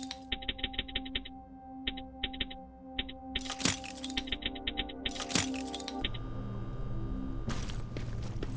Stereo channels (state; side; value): identical; both; correlation 1.00